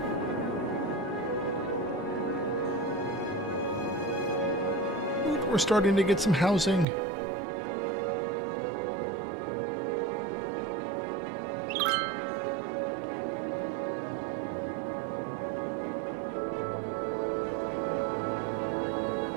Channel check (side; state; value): left; drops out; at 6.9 s